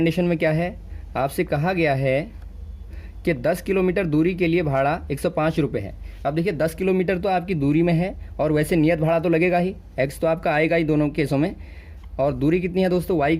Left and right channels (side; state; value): both; identical; correlation 1.00